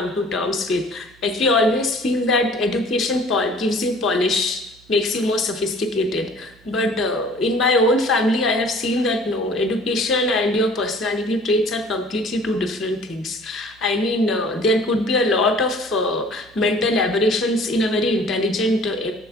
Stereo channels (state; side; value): noise; right; hum, 29 dB below the sound